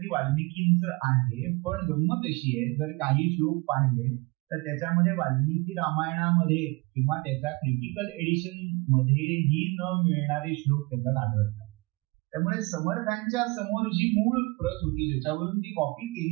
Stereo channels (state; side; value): quieter; left; 25.8 dB